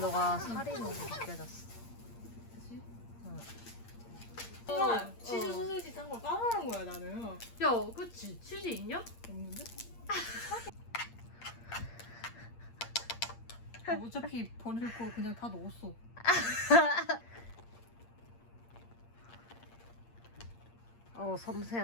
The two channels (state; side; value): late; right; 8.6 ms